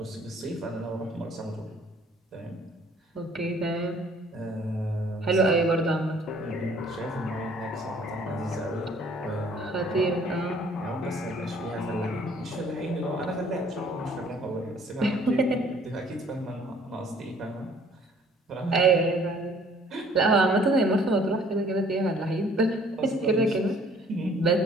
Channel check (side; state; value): both; normal; correlation 0.57